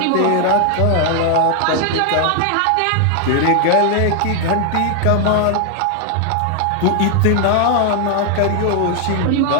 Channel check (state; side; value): different; both; correlation 0.00